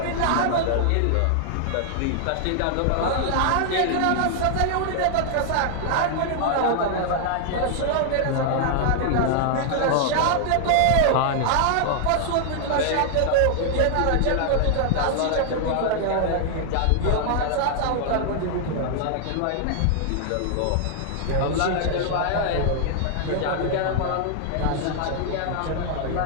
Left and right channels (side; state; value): both; different; correlation -0.01